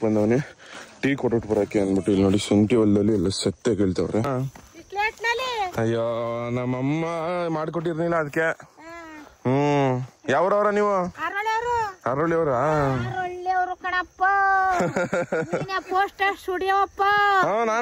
ಬಂದವನಿ ಟೀ ಕೊಟ್ಬಿಟ್ಟು ಬರಕ್ಕೆ ಅಂದ್ಬಿಟ್ಟು ಇಲ್ಲಿ ನೋಡಿ ಶುಂಠಿ ಹೊಲದಲ್ಲಿ ಎಲ್ಲ ಸತ್ತೆ ಕೇಳ್ತವ್ರೆ. ಅಯ್ಯೋ ನಮ್ಮಮ್ಮ ಮಾಡ್ಕೊಟ್ಟಿರ್ಲಿಲ್ಲ ಅದಕ್ಕೆ. ಯಾವ್ರವ್ರ ನೀವು? ಅರಳಿಯವ್ರ ಕಣಪ್ಪ ಪೋಸ್ಟರ್ ಸ್ಟುಡಿಯೋಪ್ಪ.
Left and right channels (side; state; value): both; identical; correlation 1.00